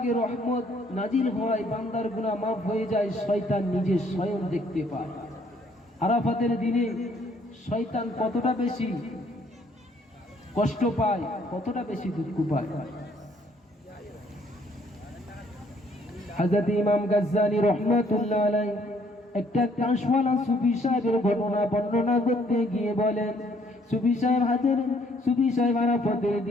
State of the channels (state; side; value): normal; both; correlation 0.64